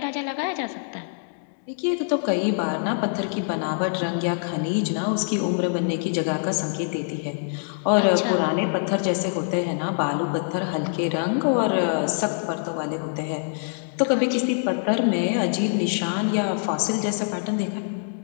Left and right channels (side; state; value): right; silent; 62 dB below the other